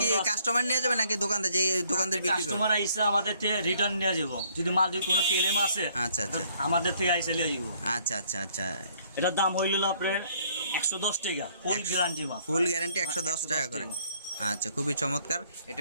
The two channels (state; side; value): inverted; both; correlation -0.64